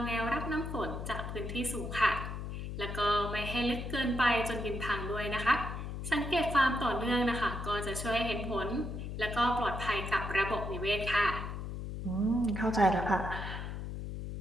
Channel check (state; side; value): noise; left; hum, 6 dB below the sound